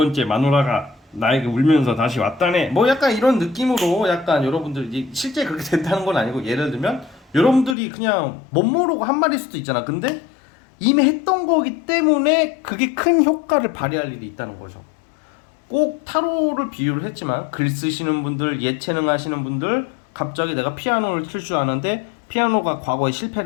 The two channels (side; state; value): right; drops out; at 7.8 s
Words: 마누라가 나에게 울면서 다시 왔다네. 뭐 약간 이런 느낌으로 약간 여러분들이 실제 그렇게 된다는 건 아니고, 예를 들면 여러분들이 그냥 못 모르고 한 말일 수도 있잖아. 근데 이미 했던 거기 때문에 그게 큰 효과를 발휘할 일이 있다는 거죠. 꼭 타로를 비유를 했지만 글 쓰시는 분들, 예체능 하시는 분들, 갑자기 내가 피아노를 칠 줄 아는데 피아노가 과거에